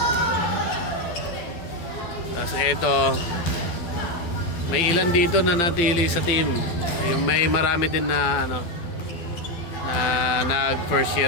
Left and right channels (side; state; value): right; late; 12 ms